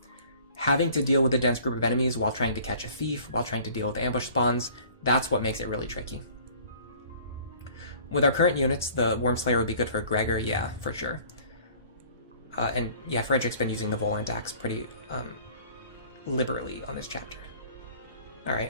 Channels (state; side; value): inverted; both; correlation -0.51